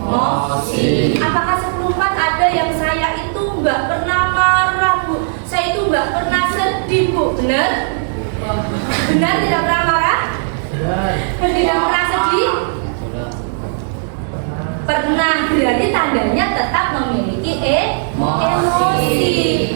Apakah 10-4 ada yang saya itu nggak pernah marah, Bu? Saya itu nggak pernah sedih, Bu. Benar? Benar tidak pernah marah? Tidak pernah sedih? Pernah, berarti tandanya tetap memiliki emosi.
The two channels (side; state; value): left; silent; digital silence